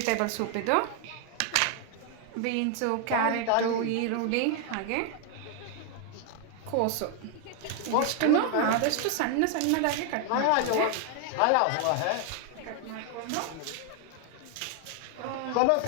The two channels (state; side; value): different; both; correlation 0.00